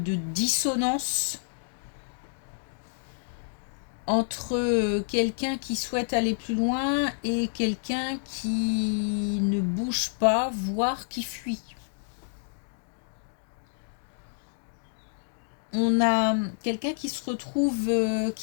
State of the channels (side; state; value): right; silent; digital silence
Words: dissonance entre quelqu'un qui souhaite aller plus loin et quelqu'un qui ne bouge pas, voire qui fuit. On a quelqu'un qui se retrouve,